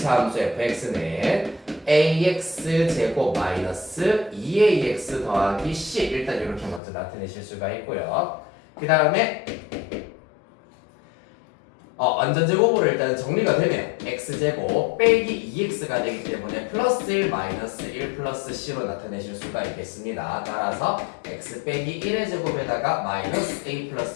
함수 fx는 ax 제곱 마이너스 2ax 더하기 c 일단 이렇게 먼저 나타내실 수가 있고요. 그 다음에 완전제곱으로 일단 정리가 되면 x제곱 빼기 2x가 되기 때문에 플러스 1 마이너스 1 플러스 c로 나타내실 수가 있겠습니다. 따라서 x 빼기 1의 제곱에다가 마이너스 a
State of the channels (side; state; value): right; drops out; at 6.8 s